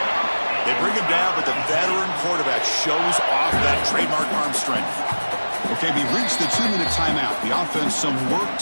They bring him down, but the veteran quarterback shows off that trademark arm strength. Okay, we reached the 2-minute timeout. The offense some work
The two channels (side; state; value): both; inverted; correlation -1.00